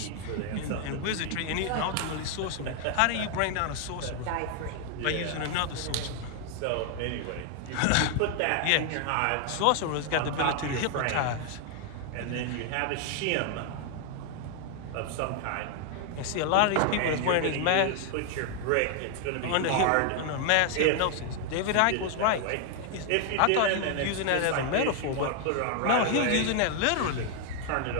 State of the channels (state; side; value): different; both; correlation 0.00